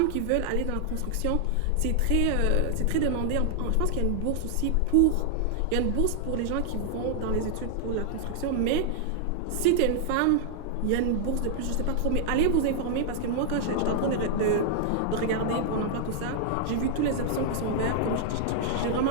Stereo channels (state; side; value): different; both; correlation -0.01